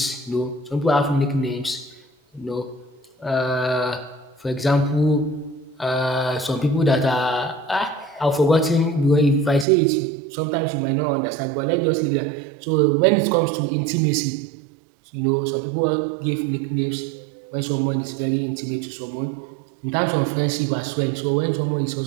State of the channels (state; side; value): drops out; left; at 9.7 s